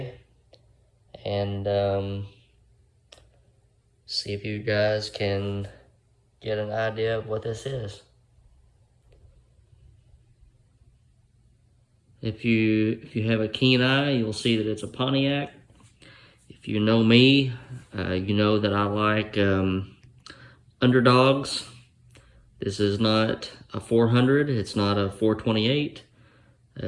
and see if you guys can get an idea of what this is. If you have a keen eye, you'll see that it's a Pontiac. If you know me, you know that I like underdogs. This is not a 400, it's not a 428,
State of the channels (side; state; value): both; identical; correlation 1.00